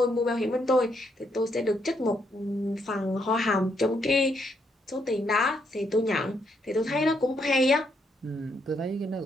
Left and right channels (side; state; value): both; normal; correlation 0.75